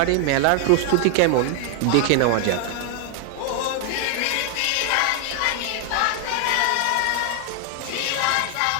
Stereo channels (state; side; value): different; both; correlation 0.00